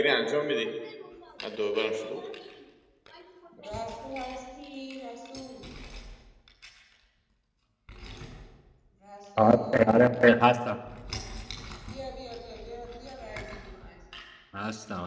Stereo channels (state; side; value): identical; both; correlation 1.00